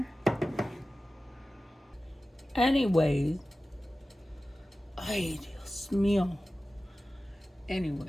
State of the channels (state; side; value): normal; both; correlation 0.95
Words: Anyways, ay, Dios mío.